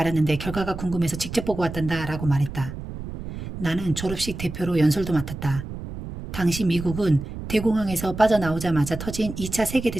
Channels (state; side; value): noise; right; rumble, 9 dB below the sound